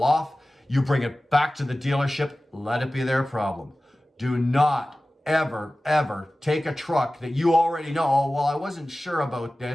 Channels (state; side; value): normal; both; correlation 0.96